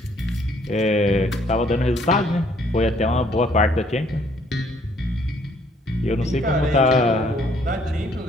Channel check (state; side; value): normal; both; correlation 0.64